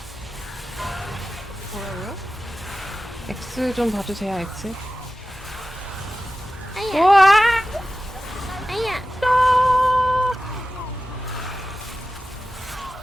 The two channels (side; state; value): both; normal; correlation 0.94